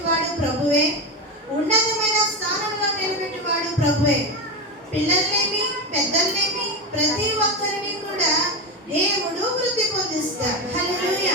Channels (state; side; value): normal; both; correlation 0.16